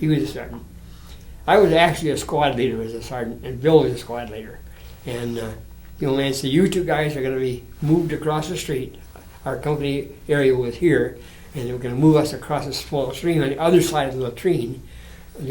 was a sergeant. I was actually a squad leader as a sergeant, and Bill was a squad leader. And the old man said, you two guys are going to be moved across the street. Our company area was here, and they were going to move us across a small stream on the other side of the latrine.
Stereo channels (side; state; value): both; identical; correlation 1.00